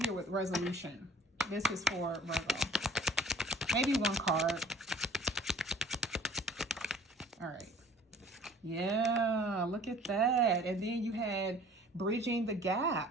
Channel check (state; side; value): normal; both; correlation 0.50